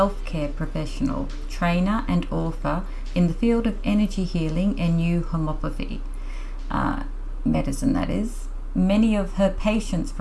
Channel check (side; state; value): both; identical; correlation 1.00